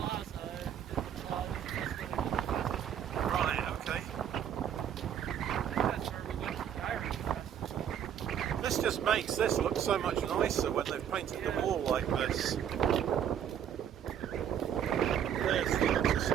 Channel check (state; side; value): quieter; left; 9.3 dB